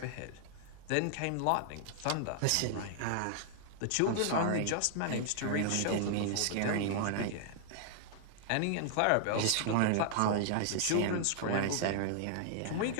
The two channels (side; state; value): both; different; correlation -0.01